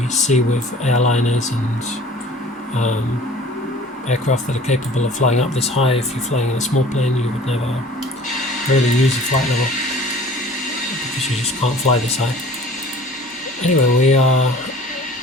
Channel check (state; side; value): normal; both; correlation 0.48